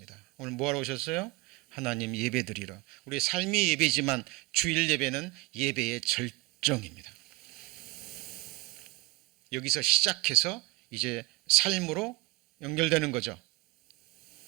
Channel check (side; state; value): left; quieter; 20.9 dB